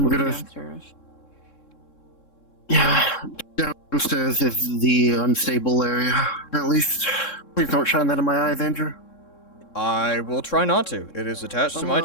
it'll be gonna- downstairs. Yeah, downstairs is the unstable area. At least, please don't shine that in my eyes, Andrew. I will try not to. It is attached to my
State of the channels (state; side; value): late; right; 3.7 ms